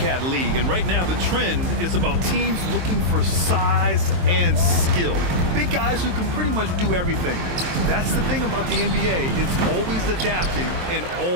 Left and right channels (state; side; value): late; left; 23 ms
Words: league, and right now the trend is about teams looking for size and skill. Big guys who can pretty much do everything. That's the thing about the NBA. It's always adapting and